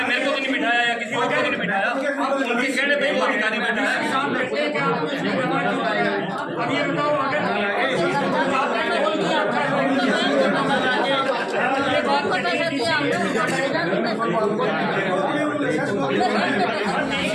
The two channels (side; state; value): both; identical; correlation 1.00